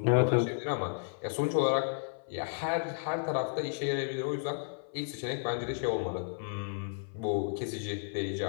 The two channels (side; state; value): right; silent; 56 dB below the other